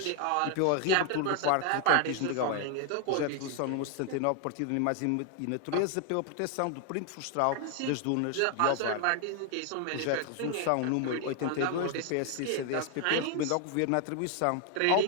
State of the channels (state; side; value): different; both; correlation 0.00